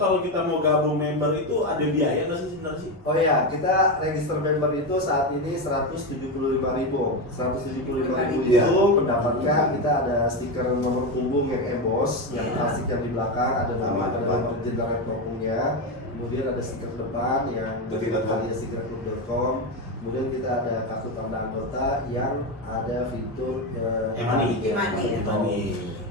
kita mau gabung member itu ada biaya nggak sih sebenarnya sih? Oh iya, kita register member itu saat ini 175.000. 175.000 Iya. itu mendapatkan kita ada stiker nomor punggung yang emboss, yang klasik yang di belakang ada nama, ada nomor jenderal punggungnya. Kemudian ada stiker depan yang kaliasigraclub.com. Kemudian kita ada kartu tanda anggota yang ada fitur E-money. E-money.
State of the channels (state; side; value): normal; both; correlation 0.13